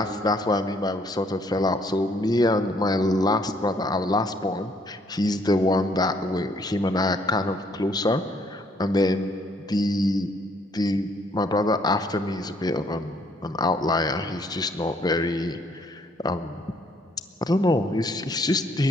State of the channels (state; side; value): normal; both; correlation 0.66